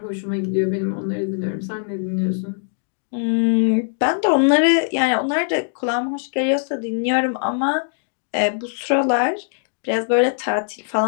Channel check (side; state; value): right; silent; digital silence